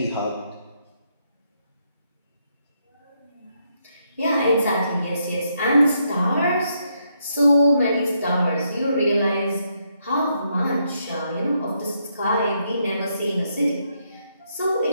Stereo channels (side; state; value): both; inverted; correlation -0.78